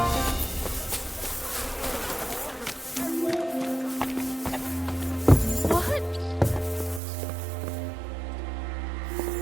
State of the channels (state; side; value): drops out; left; at 7.0 s